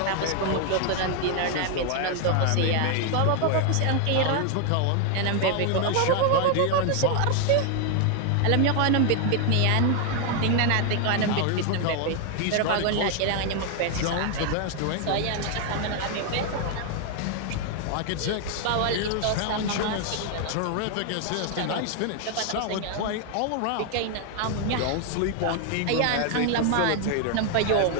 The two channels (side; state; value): both; different; correlation 0.00